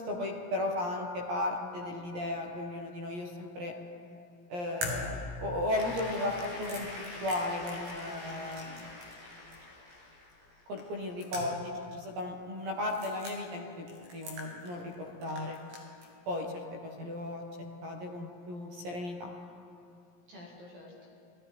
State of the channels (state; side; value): late; left; 17 ms